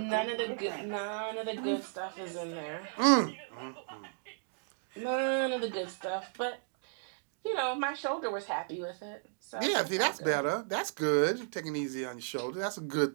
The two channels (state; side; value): silent; left; digital silence